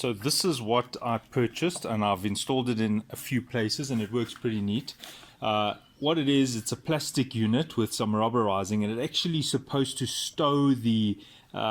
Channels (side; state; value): both; identical; correlation 1.00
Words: this is what I purchased and I've installed it in a few places and it works pretty neat. What it is, it's a plastic unit with some rubberizing and it's actually supposed to stow the